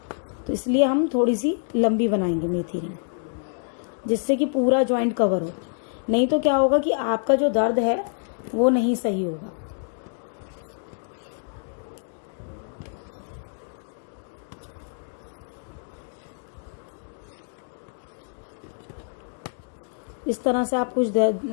तो इसलिए हम थोड़ी सी लंबी बनाएंगे मेथी रिंग, जिससे कि पूरा जॉइंट कवर हो। नहीं तो क्या होगा कि आपका जो दर्द है वो नहीं सही होगा। इस तरह से आप कुछ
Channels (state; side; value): silent; right; digital silence